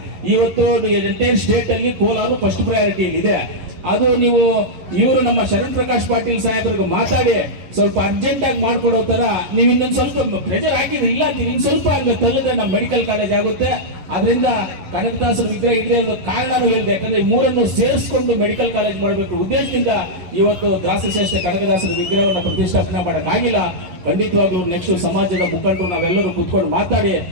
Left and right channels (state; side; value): late; left; 11 ms